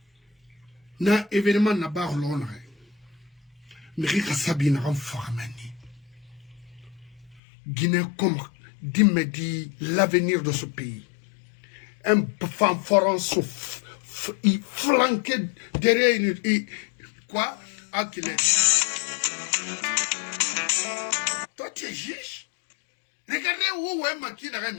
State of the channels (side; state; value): right; drops out; at 7.4 s